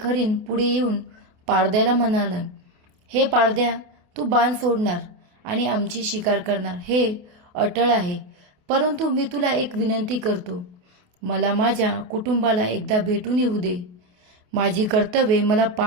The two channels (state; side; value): late; left; 28 ms